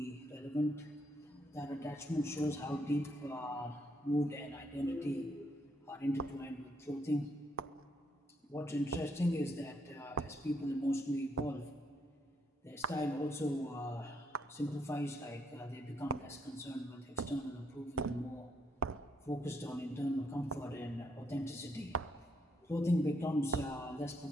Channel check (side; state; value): both; normal; correlation 0.75